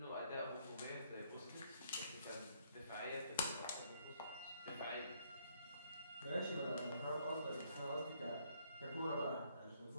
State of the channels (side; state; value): both; inverted; correlation -0.68